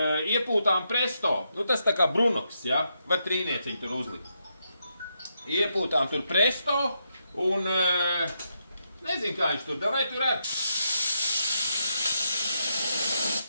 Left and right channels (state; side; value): inverted; both; correlation -0.81